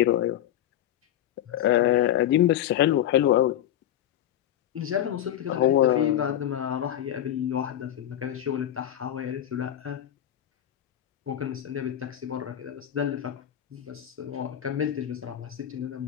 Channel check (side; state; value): right; quieter; 11.5 dB